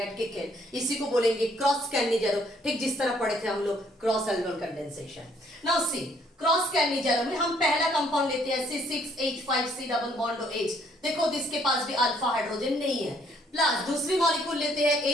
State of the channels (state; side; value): normal; both; correlation 0.65